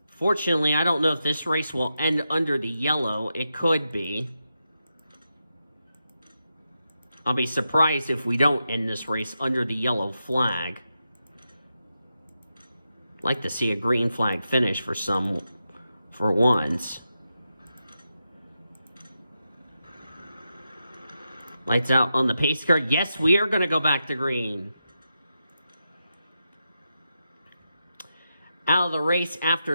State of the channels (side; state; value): both; inverted; correlation -0.88